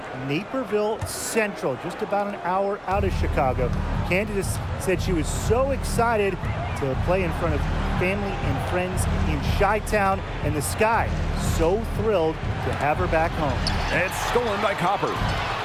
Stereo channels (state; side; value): identical; both; correlation 1.00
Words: Naperville Central, just about an hour out of Chicago. Candace said she was so excited to play in front of family and friends in Chi-Town, and the Sky so thrilled to have her back home. It's stolen by Copper.